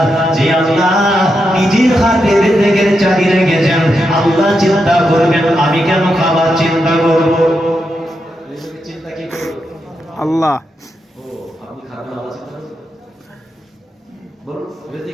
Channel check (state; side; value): normal; both; correlation 0.85